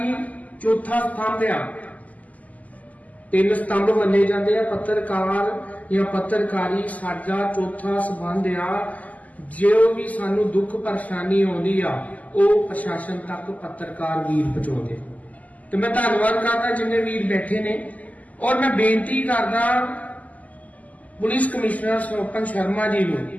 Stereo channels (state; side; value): late; right; 0.076 ms